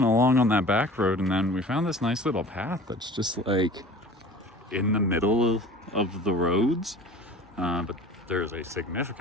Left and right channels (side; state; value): both; normal; correlation 0.42